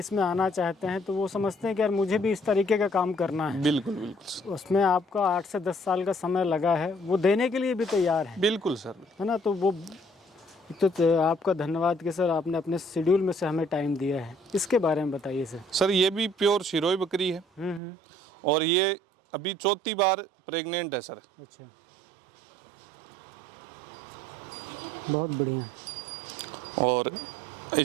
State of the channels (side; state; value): left; drops out; at 17.8 s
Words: आना चाहते हैं, तो वो समझते हैं कि यार मुझे भी इस तरीके का काम करना है। बिल्कुल बिल्कुल, उसमें आपका 8 से 10 साल का समय लगा है, वो देने के लिए भी तैयार है। बिल्कुल सर। है ना? तो वो तो आपका धन्यवाद कि सर आपने अपने शेड्यूल में से हमें टाइम दिया है। इसके बारे में बताइए सर। सर ये भी प्योर सिरोही बकरी है और ये अभी 4थी बार प्रेग्नेंट है सर। अच्छा, बहुत बढ़िया। और